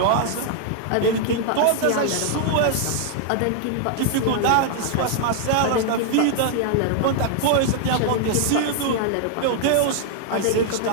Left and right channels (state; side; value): different; both; correlation 0.00